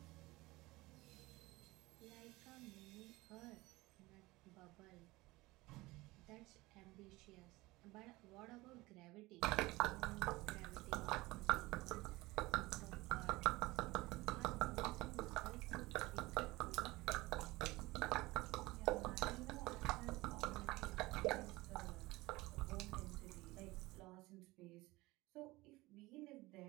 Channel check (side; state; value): left; quieter; 20.6 dB